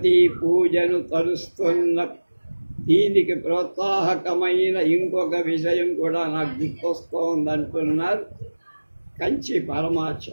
పూజను తరుస్తున్న. దీనికి ప్రోత్సాహకమైన ఇంకొక విషయం కూడా నాకు గుర్తొస్తోందంటున్నారు కంచి పరమార్చ.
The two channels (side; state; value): both; inverted; correlation -1.00